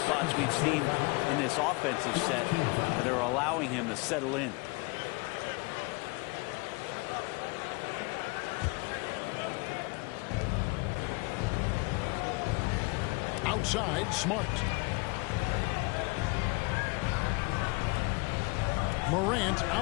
spots we've seen in this offensive set that are allowing him to settle in. Outside, Smart. Morant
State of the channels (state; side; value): quieter; right; 28.3 dB